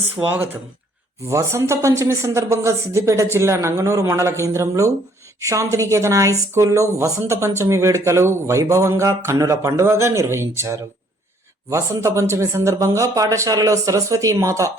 వసంత పంచమి సందర్భంగా సిద్దిపేట జిల్లా నంగనూరు మండల కేంద్రంలో శాంతినికేతన హై స్కూల్లో వసంత పంచమి వేడుకలు వైభవంగా కన్నుల పండుగగా నిర్వహించారు. వసంత పంచమి సందర్భంగా పాఠశాలలో సరస్వతీ మాత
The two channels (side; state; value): both; normal; correlation 0.63